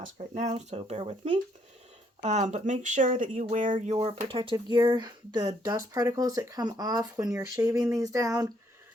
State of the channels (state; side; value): normal; both; correlation 0.69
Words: right now, so bear with me. But make sure that you wear your protective gear. The dust particles that come off when you're shaving these down,